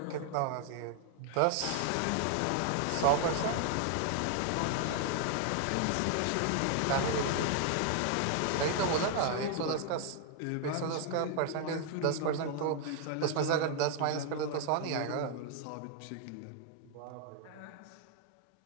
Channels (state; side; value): different; both; correlation 0.00